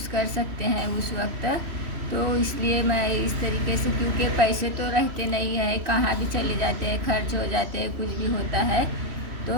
कर सकते हैं उस वक्त। तो इसलिए मैं इस तरीके से, क्योंकि पैसे तो रहते नहीं है, कहाँ भी चले जाते हैं, खर्च हो जाते हैं, कुछ भी होता है।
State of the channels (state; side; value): late; left; 3.1 ms